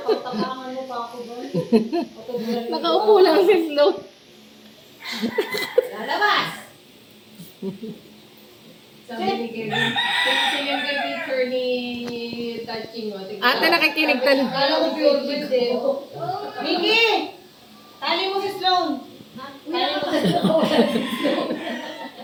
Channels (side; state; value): both; identical; correlation 1.00